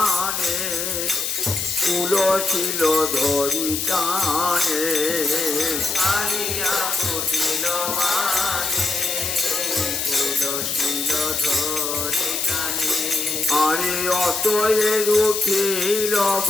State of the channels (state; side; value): noise; left; hiss, 2 dB below the sound